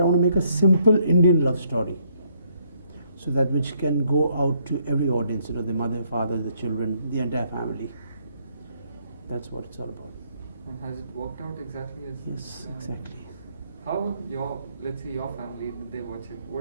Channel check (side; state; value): both; inverted; correlation -0.70